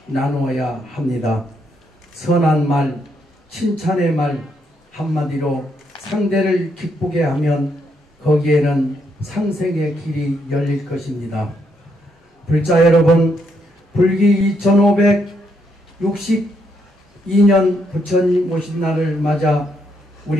나누어야 합니다. 선한 말, 칭찬의 말 한마디로 상대를 기쁘게 하면 거기에는 상생의 길이 열릴 것입니다. 불자 여러분, 불기 2562년 부처님 오신 날을 맞아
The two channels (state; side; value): normal; both; correlation 0.76